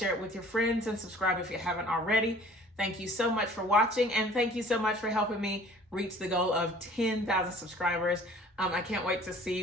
it with your friends, and subscribe if you haven't already. Thank you so much for watching, and thank you so much for helping me reach the goal of 10,000 subscribers. I can't wait to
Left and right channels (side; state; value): both; normal; correlation 0.51